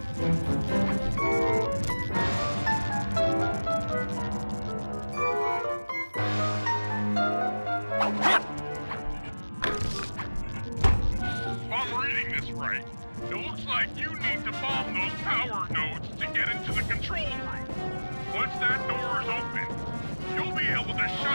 If I'm reading this right, it looks like you need to bomb those power nodes to get into the control room. Once that door is open, you'll be able to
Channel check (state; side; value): inverted; both; correlation -1.00